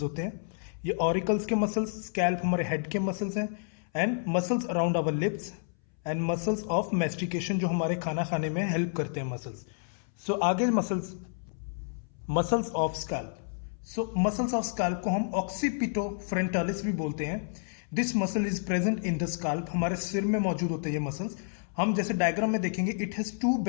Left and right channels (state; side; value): silent; right; 58 dB below the other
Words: होते हैं, ये ऑरिकल्स के मसल्स, स्कैल्प हमारे हेड के मसल्स हैं, and muscles around our lips and muscles of mastication जो हमारे खाना खाने में हेल्प करते हैं मसल्स। आगे muscles of scalp. Muscles of scalp को हम ऑक्सीपिटो फ्रंटालिस भी बोलते हैं। This muscle is present in the scalp, हमारे सिर में मौजूद होते हैं ये मसल्स। हम जैसे डायग्राम में देखेंगे, इट हैज टू